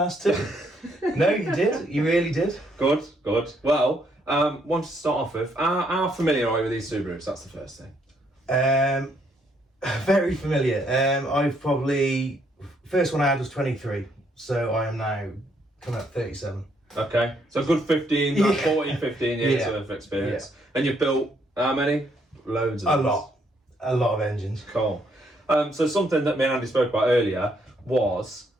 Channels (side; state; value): both; normal; correlation 0.71